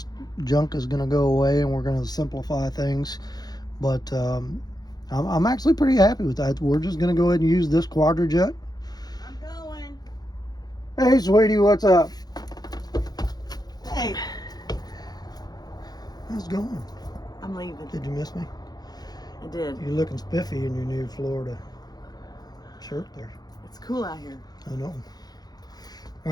junk is going to go away and we're going to simplify things. But I'm actually pretty happy with that. We're just going to go ahead and use this quadra-jet. I'm going. Hey, sweetie, what's up? Hey. How's it going? I'm leaving. Did you miss me? I did. You're looking spiffy in your new Florida shirt there. It's cool out here. I know. All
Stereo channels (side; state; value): right; late; 0.19 ms